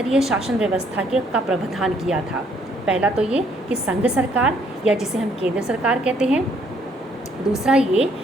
शासन व्यवस्था का प्रावधान किया था। पहला तो ये कि संघ सरकार या जिसे हम केंद्र सरकार कहते हैं, दूसरा ये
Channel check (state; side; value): normal; both; correlation 0.66